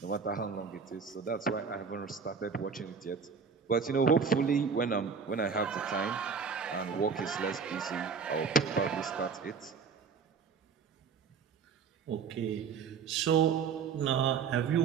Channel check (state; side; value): quieter; left; 5.9 dB